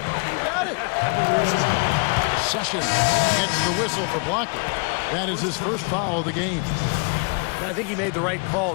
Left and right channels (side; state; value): right; quieter; 36.8 dB